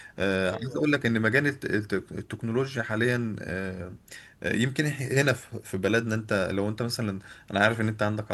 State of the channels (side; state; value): both; identical; correlation 1.00